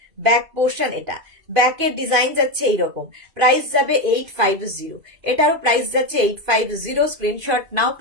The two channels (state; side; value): late; left; 2.5 ms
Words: ব্যাক পোর্শন এটা, ব্যাকের ডিজাইন যাচ্ছে এইরকম। প্রাইস যাবে 850, এটারও প্রাইস যাচ্ছে 850। স্ক্রিনশট নাও,